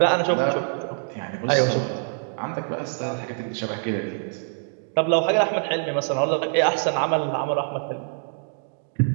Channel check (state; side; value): silent; left; digital silence